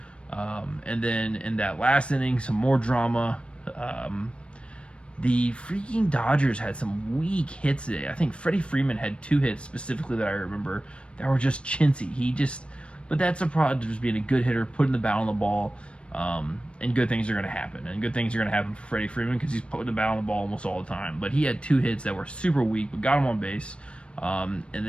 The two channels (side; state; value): right; late; 0.059 ms